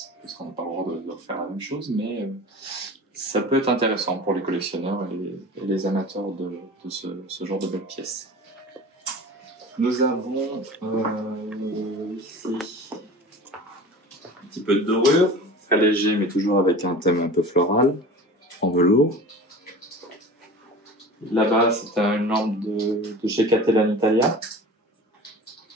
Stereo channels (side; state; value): both; normal; correlation 0.37